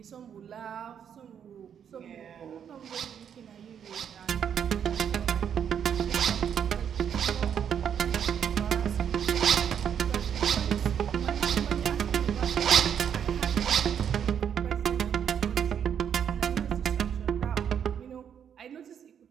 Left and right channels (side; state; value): left; quieter; 8.3 dB